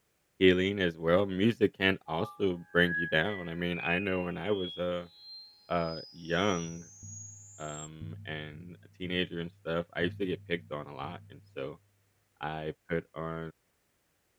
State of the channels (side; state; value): both; identical; correlation 1.00